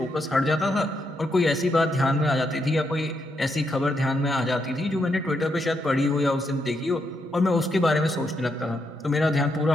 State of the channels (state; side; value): normal; both; correlation 0.79